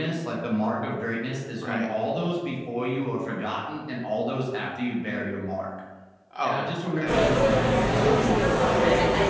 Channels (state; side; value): identical; both; correlation 1.00